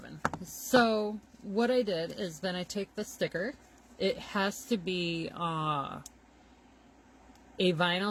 So what I did is then I take the sticker. It has to be a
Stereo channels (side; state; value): both; identical; correlation 1.00